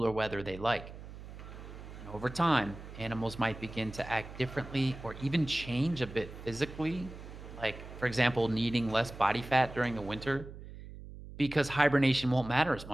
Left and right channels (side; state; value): right; noise; hum, 14 dB below the sound